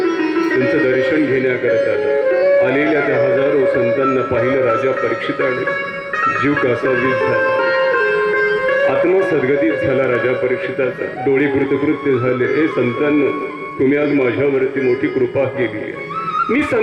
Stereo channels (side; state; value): both; identical; correlation 1.00